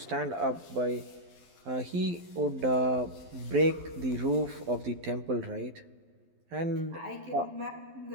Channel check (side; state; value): left; late; 12 ms